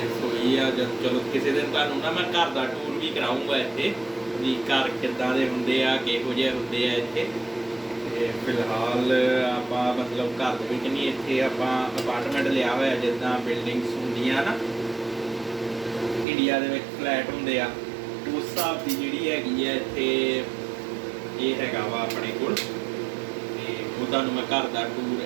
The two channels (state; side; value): drops out; left; at 16.2 s